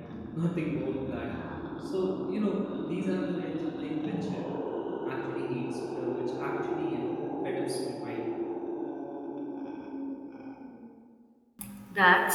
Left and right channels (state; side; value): identical; both; correlation 1.00